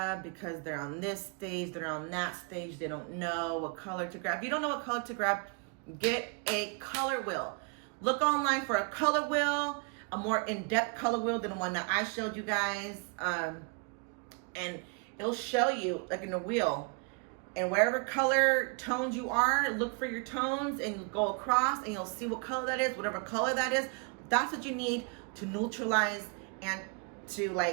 because they're on this stage, they're on that stage, they don't know what color to grab. If you don't know what color to grab, get a color wheel. Look online for a color wheel, a more in-depth color wheel than the one that I showed you guys, and it'll show you like in the wheel. And wherever color tones you are, look for your tones and go across and you'll see what color that is. Whatever color that is, that's what you need to neutralize and to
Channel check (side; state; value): left; quieter; 35.7 dB